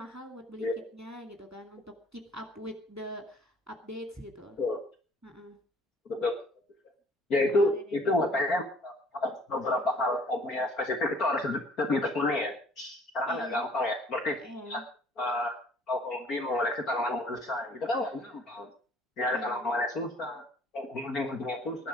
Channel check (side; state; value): both; normal; correlation 0.56